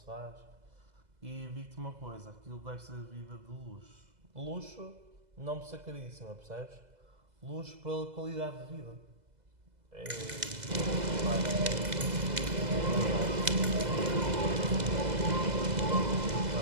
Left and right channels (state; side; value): late; left; 2.0 ms